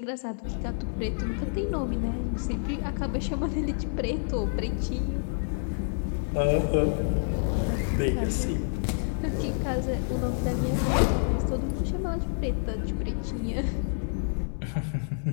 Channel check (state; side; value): silent; right; digital silence